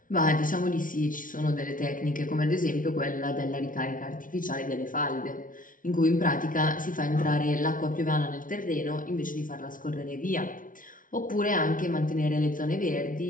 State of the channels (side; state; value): right; late; 0.39 ms